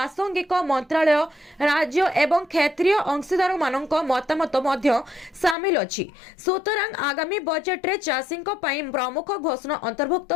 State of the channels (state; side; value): drops out; right; at 5.6 s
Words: मंत्रालय राज्य एवं क्षेत्रीय अंशीदार मानक मतामत मध्य शामिल अछि। सुतरां आगामी बजट रे चासींक पई प्रमुख घोषणा अंतर्भुक्त